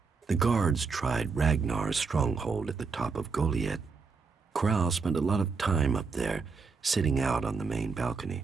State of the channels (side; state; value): left; quieter; 4.8 dB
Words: The guards tried Ragnar's stronghold at the top of Goliath. Kral spent a lot of time up there, sitting out on the main balcony.